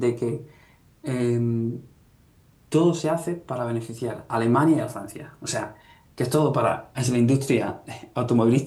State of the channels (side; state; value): both; identical; correlation 1.00